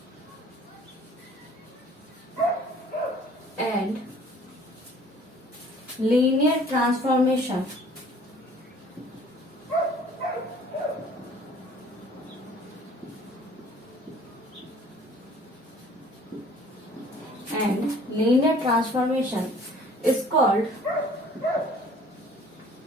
and linear transformation is called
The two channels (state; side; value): normal; both; correlation 0.53